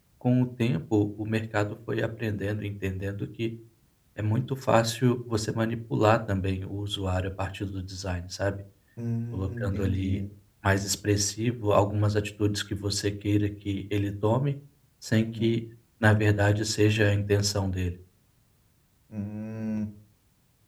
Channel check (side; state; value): both; identical; correlation 1.00